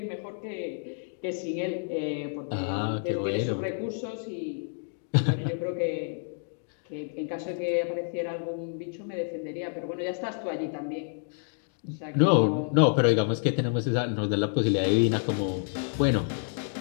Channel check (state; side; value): silent; right; digital silence